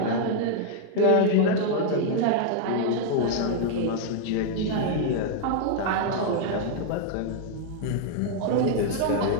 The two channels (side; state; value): both; different; correlation 0.00